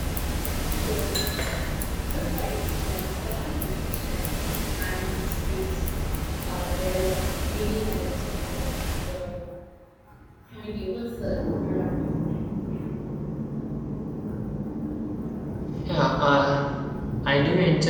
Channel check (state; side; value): identical; both; correlation 1.00